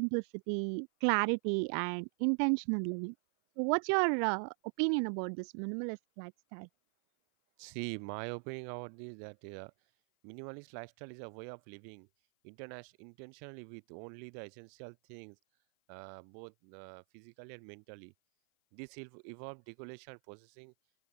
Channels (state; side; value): silent; left; 51 dB below the other